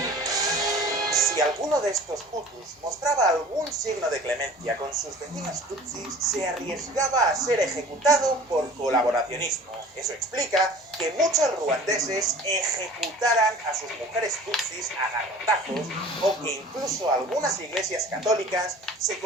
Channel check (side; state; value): both; normal; correlation 0.44